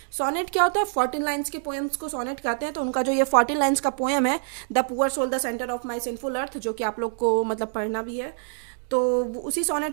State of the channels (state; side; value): silent; left; digital silence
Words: सोनेट क्या होता है? 14 लाइन्स के पोएम्स को सोनेट कहते हैं। तो उनका जो ये 14 लाइन्स का पोएम है, the poor soul the centre of my sinful earth, जो कि आप लोग को मतलब पढ़ना भी है, तो उसी